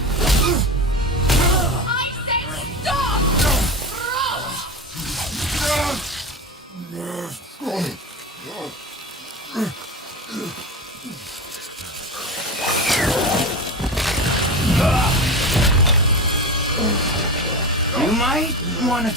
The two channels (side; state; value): both; normal; correlation 0.25